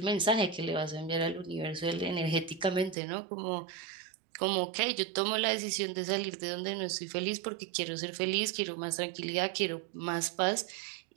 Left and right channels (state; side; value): drops out; left; at 3.0 s